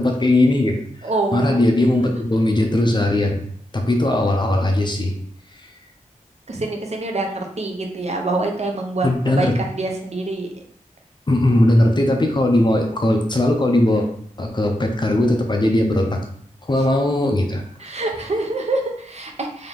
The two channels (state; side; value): normal; both; correlation 0.84